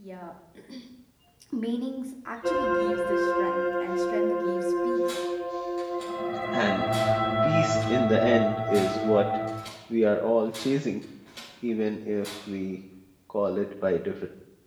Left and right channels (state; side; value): identical; both; correlation 1.00